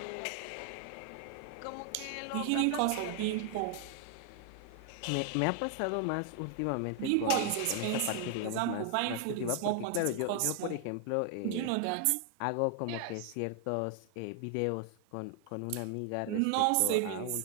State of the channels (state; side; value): different; both; correlation 0.00